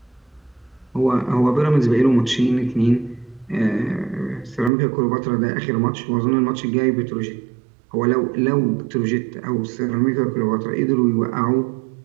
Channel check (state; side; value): drops out; left; at 4.7 s